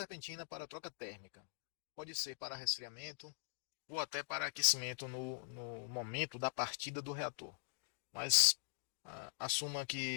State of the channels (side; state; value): right; silent; digital silence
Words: para troca térmica. Pode ser para resfriamento ou até para aquecimento no momento da partida do reator. Mas assuma